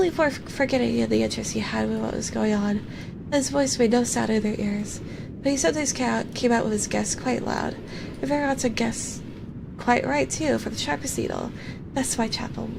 for forgetting the interest he had in what was going on. His voice made no sound in their ears, but he sometimes came out with his guess quite loud, and very often guessed quite right too, for the sharpest needle. That's Whitechapel.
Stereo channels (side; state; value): both; identical; correlation 1.00